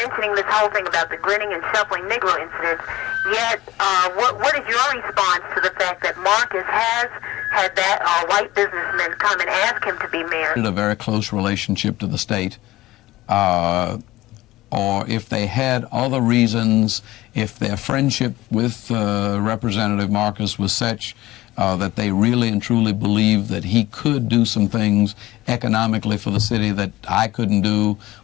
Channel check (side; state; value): right; quieter; 17.4 dB